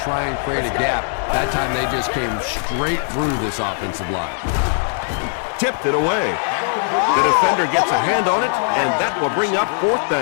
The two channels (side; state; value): right; silent; 66 dB below the other